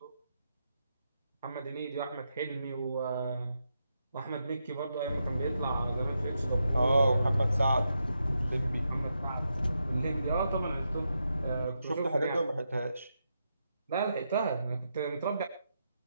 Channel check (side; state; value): both; inverted; correlation -0.84